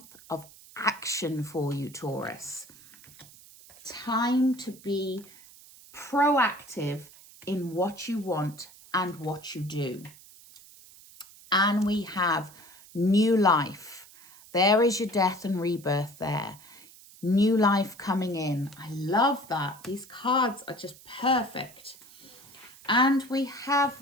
of action for you, Taurus. Time to be proactive in what you want and what you do. And we have new life. There is your death and rebirth there. New life coming in. I love that. These cards are just perfect. And we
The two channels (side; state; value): right; noise; hiss, 22 dB below the sound